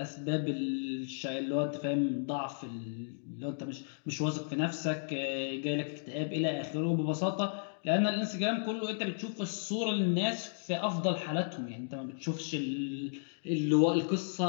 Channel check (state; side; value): silent; right; digital silence